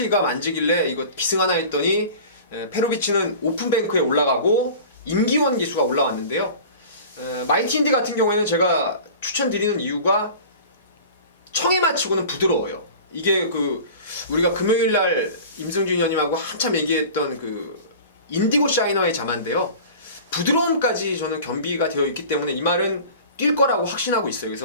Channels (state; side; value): inverted; both; correlation -0.39